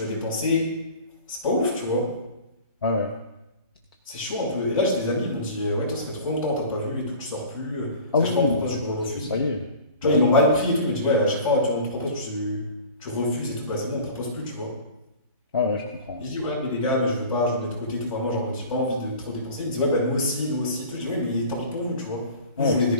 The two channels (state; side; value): inverted; both; correlation -0.41